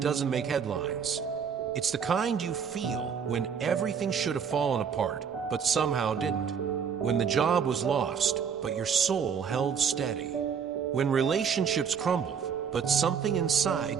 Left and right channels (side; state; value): left; quieter; 6.9 dB